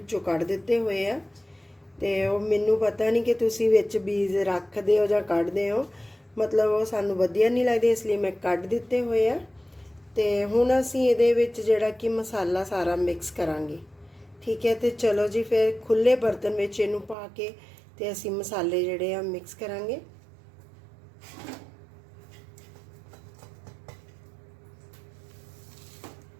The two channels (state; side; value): drops out; left; at 17.2 s